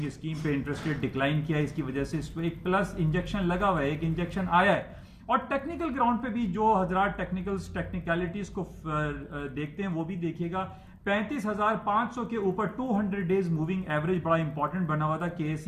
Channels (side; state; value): both; identical; correlation 1.00